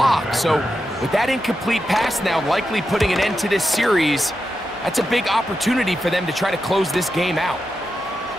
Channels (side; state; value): both; normal; correlation 0.88